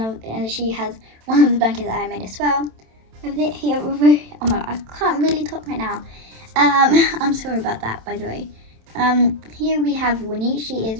the blankets that I made as well. Over here, oh my God, I can't really talk right now. I'm sorry about that, by the way. Here we have Winnie. She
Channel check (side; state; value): left; late; 27 ms